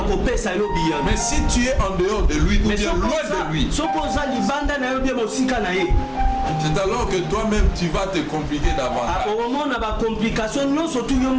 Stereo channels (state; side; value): identical; both; correlation 1.00